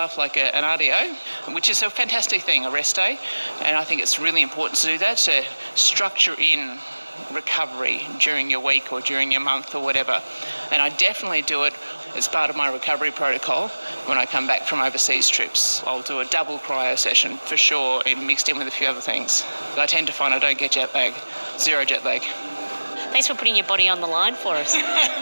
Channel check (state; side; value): inverted; both; correlation -1.00